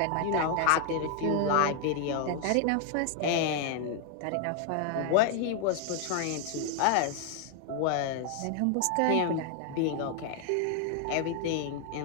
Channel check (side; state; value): both; different; correlation 0.00